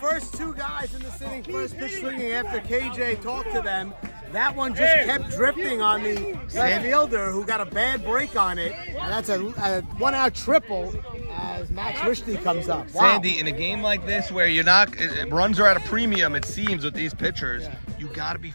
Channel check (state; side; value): inverted; both; correlation -1.00